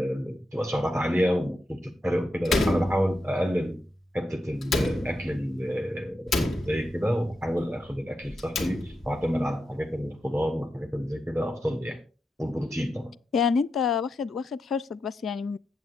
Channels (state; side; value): normal; both; correlation 0.86